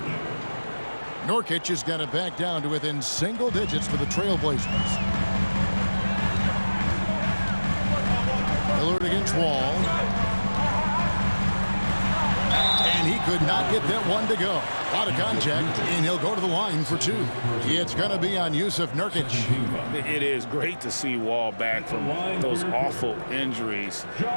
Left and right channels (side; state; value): both; inverted; correlation -1.00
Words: Nurkic has got it back down to within single digits for the Trailblazers. Lillard against Wall. And he could not get that one to go. Out of contact, and he'll go to the line for 2. It's going to be on Yusuf Nurkic. It is great to see Wall back from those awful injuries,